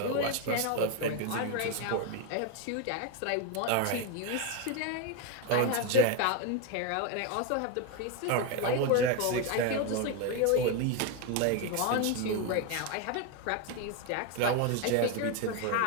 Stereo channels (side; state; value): both; different; correlation 0.02